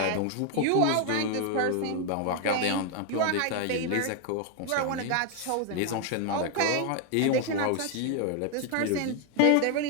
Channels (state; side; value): different; both; correlation 0.00